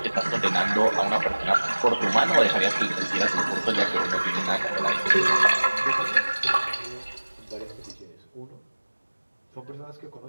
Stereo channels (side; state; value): both; inverted; correlation -1.00